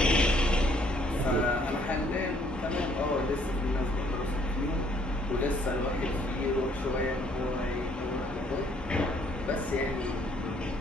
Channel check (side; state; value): both; normal; correlation 0.64